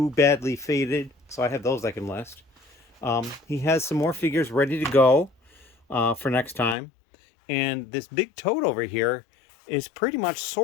badly faded. So I have those I can list. He has some more figures ready to go for next time. And this big tote over here is pretty much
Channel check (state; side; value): drops out; right; at 6.8 s